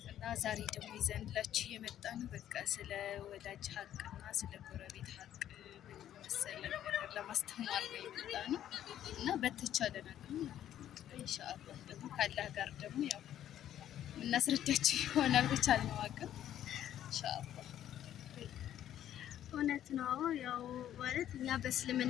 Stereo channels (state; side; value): quieter; right; 11.3 dB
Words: እና ዛሬ ደግሞ ይዘንላችሁ የመጣ ነው በቃ ስለ ወዳጅ ሀቅና ስለ ጎረቤት ሀቅ መሰለ ነገር ለማስተማር ነው የመጣ ነው እና በተቻለ ነገር ኢንሻአላህ ደግሞ ካላህ ጋር ደግሞ ያው እናስረዳችሁ ይሆናል በቻልነው አቅም ኢንሻአላህ። እውነት ነው። ያው ማለት እኛ